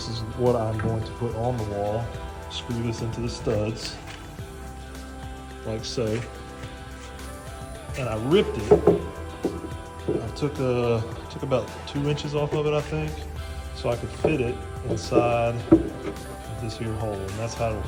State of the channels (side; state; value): both; identical; correlation 1.00